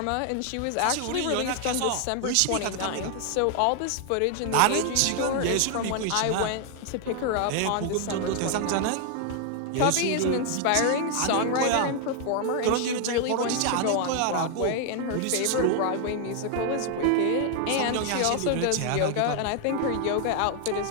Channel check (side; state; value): both; different; correlation 0.00